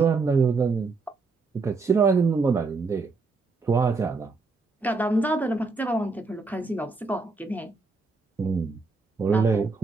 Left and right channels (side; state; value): left; quieter; 4.1 dB